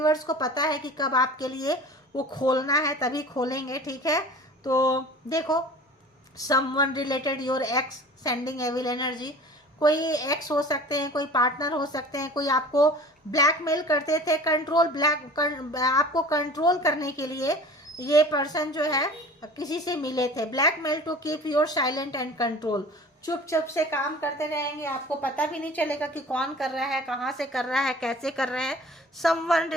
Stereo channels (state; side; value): normal; both; correlation 0.42